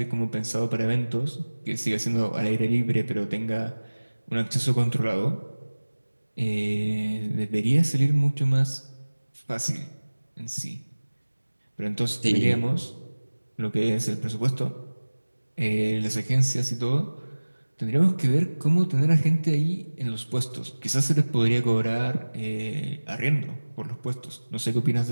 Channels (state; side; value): inverted; both; correlation -1.00